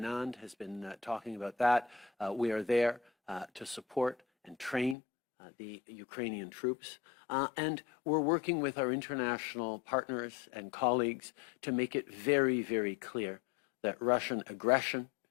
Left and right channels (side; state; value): right; drops out; at 5.0 s